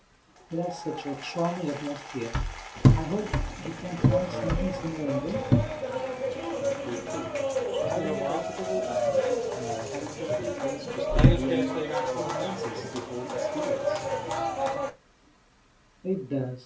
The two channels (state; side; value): identical; both; correlation 1.00